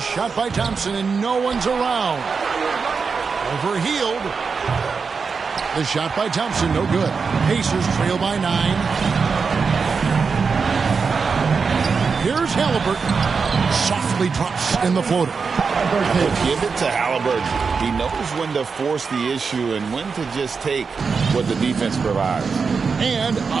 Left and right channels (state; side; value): quieter; left; 5.2 dB